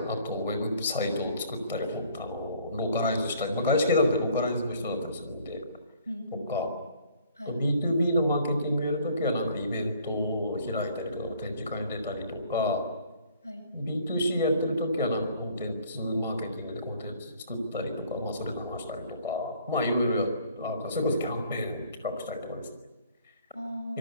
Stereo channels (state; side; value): inverted; both; correlation -0.58